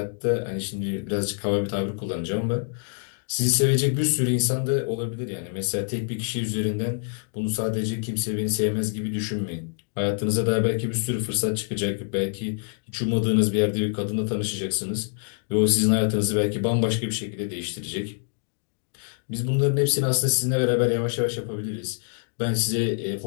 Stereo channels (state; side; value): silent; right; 61 dB below the other